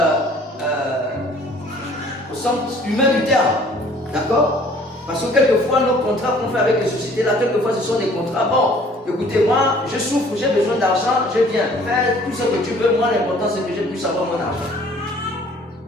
humain du terme. D'accord? Parce que quelquefois, nos contrats qu'on fait avec les sociétés, là, quelquefois, ce sont des contrats. Bon, écoutez, moi, je souffre, j'ai besoin d'argent, je viens. Fais tout ce que tu veux. Moi, l'important, c'est que je puisse avoir mon argent.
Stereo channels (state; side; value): normal; both; correlation 0.55